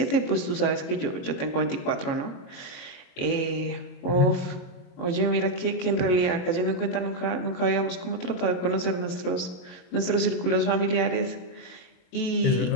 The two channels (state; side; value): late; right; 22 ms